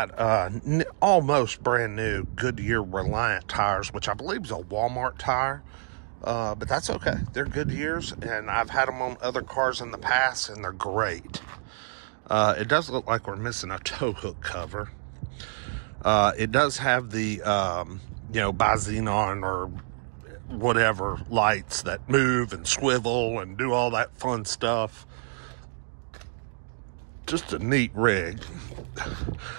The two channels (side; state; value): left; silent; digital silence